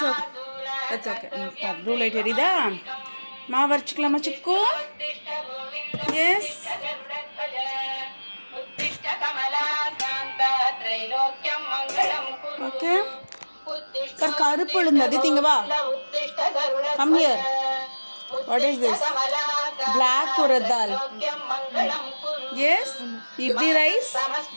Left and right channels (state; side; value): inverted; both; correlation -1.00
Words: okay that's okay blue light எரியுதா மாவு அரைச்சிக்கலாமா சிக்கு yes okay கருப்பு உளுந்து திங்க வா come here what is this black urad dal yes idli rice